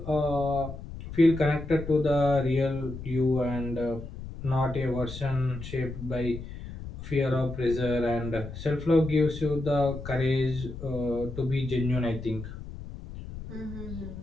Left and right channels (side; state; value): left; noise; rumble, 11 dB below the sound